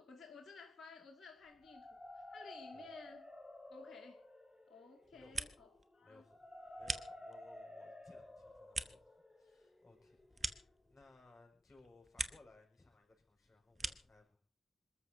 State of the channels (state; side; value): normal; both; correlation 0.87